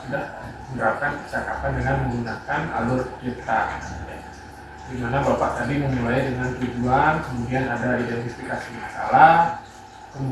sudah menerapkan percakapan dengan menggunakan alur cerita, di mana Bapak tadi memulai dengan tujuan, kemudian ada identifikasi masalah,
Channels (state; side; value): identical; both; correlation 1.00